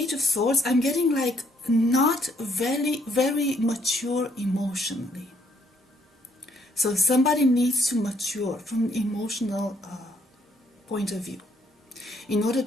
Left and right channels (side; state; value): both; normal; correlation 0.69